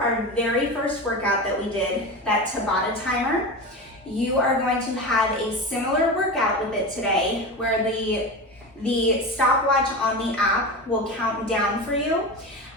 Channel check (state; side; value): normal; both; correlation 0.25